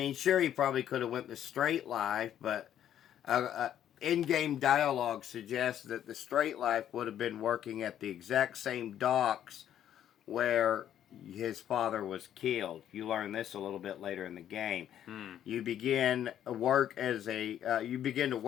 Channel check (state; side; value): quieter; right; 10.6 dB